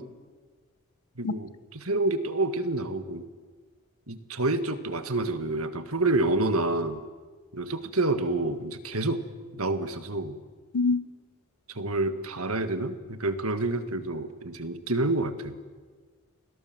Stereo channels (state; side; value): normal; both; correlation 0.06